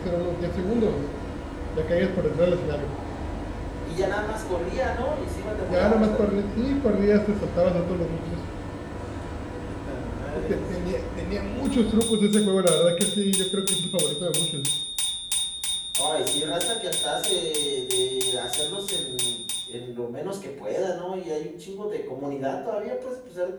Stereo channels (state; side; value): identical; both; correlation 1.00